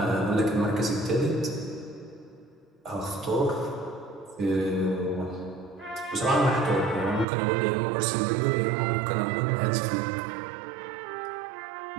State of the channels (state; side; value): drops out; left; at 7.2 s